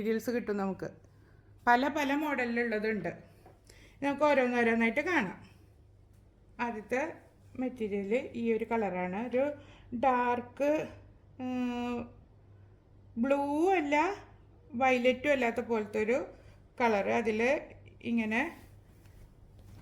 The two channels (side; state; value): both; identical; correlation 1.00